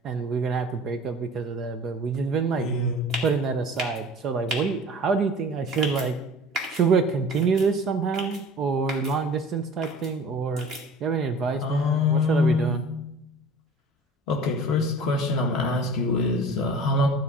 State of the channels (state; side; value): normal; both; correlation 0.43